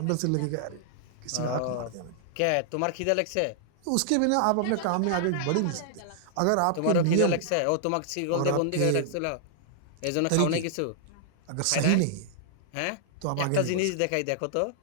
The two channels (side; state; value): both; different; correlation -0.01